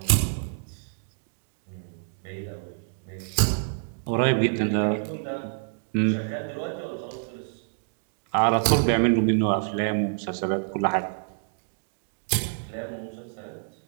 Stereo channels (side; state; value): left; silent; digital silence